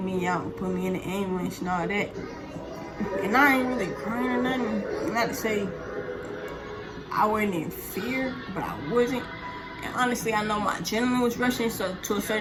me out and put me in the ambulance and all that. And I ain't really crying or nothing. Not to say I wasn't in fear, but I wasn't. And honestly, I know my adrenaline was rushing, so to a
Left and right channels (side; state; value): both; identical; correlation 1.00